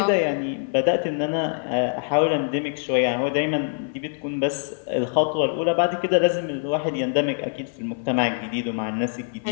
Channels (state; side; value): silent; right; 57 dB below the other